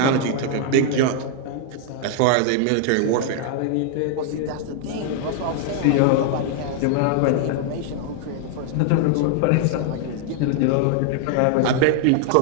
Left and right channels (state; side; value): different; both; correlation 0.00